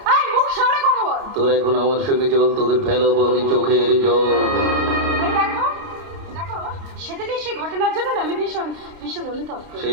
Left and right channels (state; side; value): late; left; 30 ms